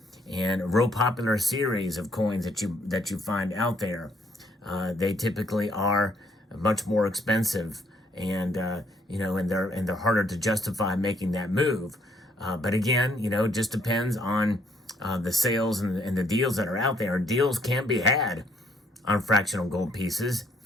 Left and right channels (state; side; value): normal; both; correlation 0.67